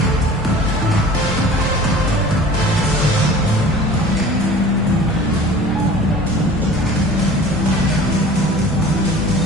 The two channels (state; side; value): normal; both; correlation 0.43